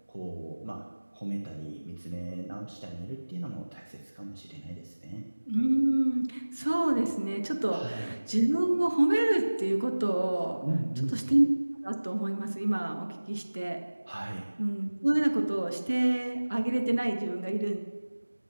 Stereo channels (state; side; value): inverted; both; correlation -1.00